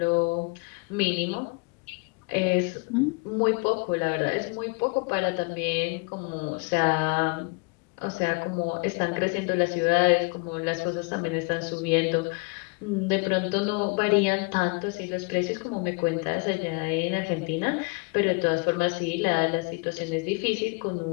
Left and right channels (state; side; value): quieter; right; 30.7 dB